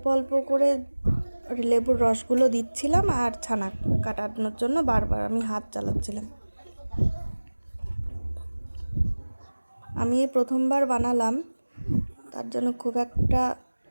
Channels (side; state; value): both; inverted; correlation -1.00